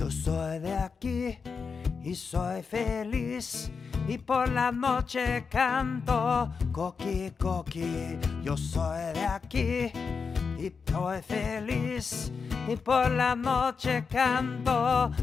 soy de aquí y soy feliz, y por la noche canto coqui, coqui. Yo soy de aquí y soy feliz, y por la noche canto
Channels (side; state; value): right; quieter; 5.3 dB